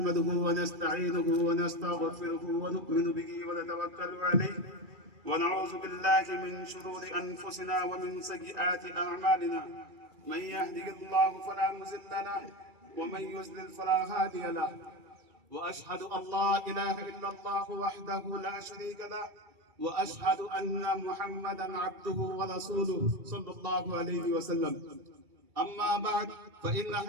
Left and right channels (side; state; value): left; late; 2.3 ms